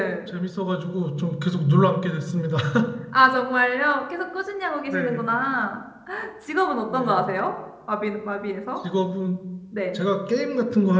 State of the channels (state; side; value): identical; both; correlation 1.00